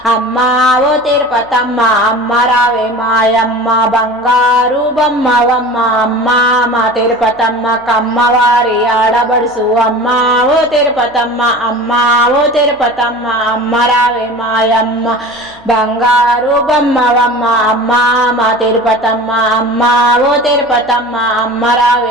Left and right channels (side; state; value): left; noise; hum, 29 dB below the sound